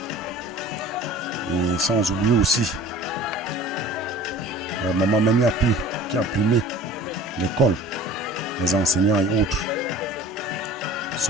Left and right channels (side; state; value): both; normal; correlation 0.43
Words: Et sans oublier aussi Maman Meniapi qui a primé l'école, les enseignants et autres.